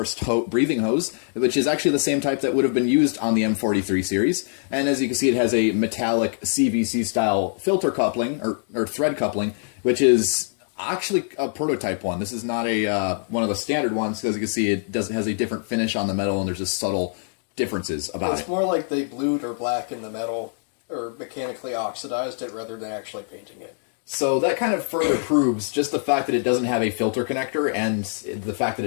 breathing hose, which is actually the same type that would have been used on the M43 series. And as you can see, it has a metallic CVC style filter coupling or thread coupling, which is actually a prototype one. This is not a one of the standard ones, because you can see it has a different finish on the metal, and there's just subtle differences about it. It's more like they blued or blackened the metal, or mechanically oxidized it rather than actually painting it. So that kind of further proves just the fact that it doesn't have a filter connector, and the fact that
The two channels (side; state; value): right; silent; 63 dB below the other